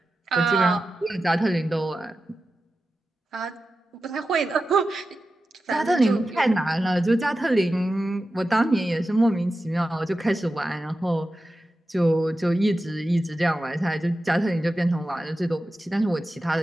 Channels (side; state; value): both; normal; correlation 0.93